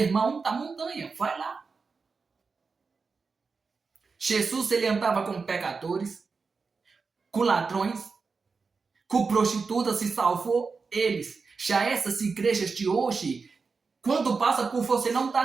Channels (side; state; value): left; quieter; 4.7 dB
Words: da Montanha. Vai lá. Jesus, ele andava com pecadores, com ladrões, com prostitutas, e salvou eles. Já essas igrejas de hoje, quando passa por você, não